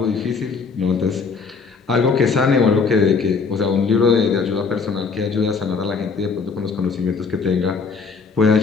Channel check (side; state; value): right; quieter; 5.0 dB